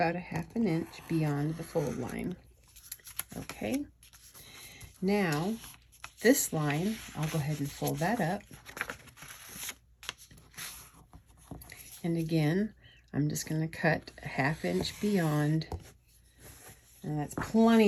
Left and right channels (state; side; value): identical; both; correlation 1.00